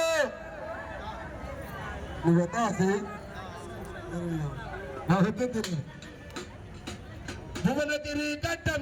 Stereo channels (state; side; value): identical; both; correlation 1.00